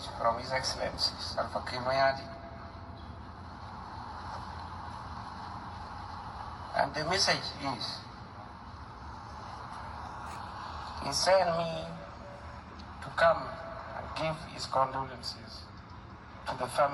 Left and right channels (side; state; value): both; identical; correlation 1.00